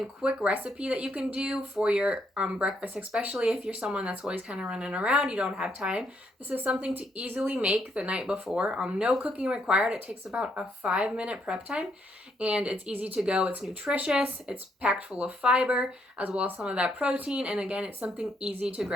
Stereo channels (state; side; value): normal; both; correlation 0.74